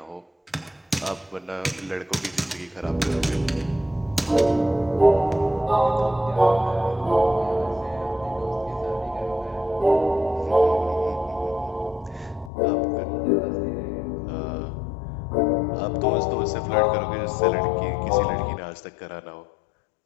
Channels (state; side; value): drops out; right; at 12.5 s